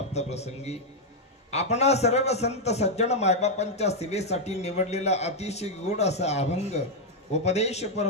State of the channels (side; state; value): both; normal; correlation -0.01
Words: प्रसंगी आपणा सर्व संत सज्जन मायबापांच्या सेवेसाठी निवडलेला अतिशय गोड असा अभंग उपदेशपर